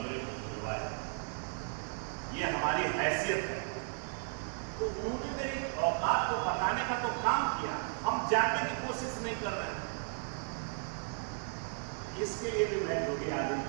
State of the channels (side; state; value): left; silent; 54 dB below the other